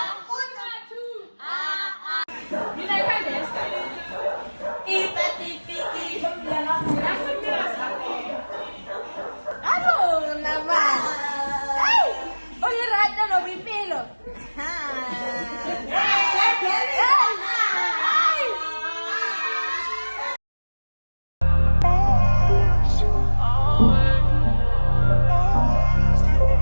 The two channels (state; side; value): inverted; both; correlation -1.00